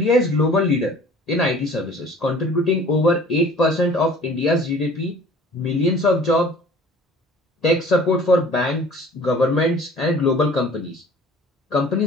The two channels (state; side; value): normal; both; correlation 0.49